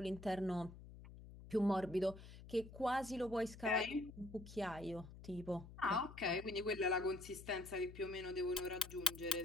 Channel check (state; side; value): noise; left; hum, 15 dB below the sound